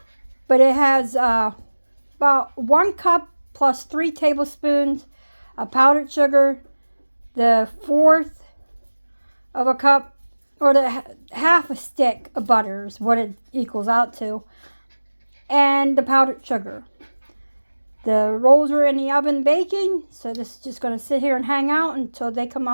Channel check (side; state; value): both; inverted; correlation -1.00